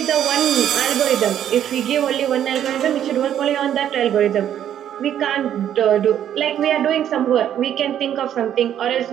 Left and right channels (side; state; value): left; quieter; 10.3 dB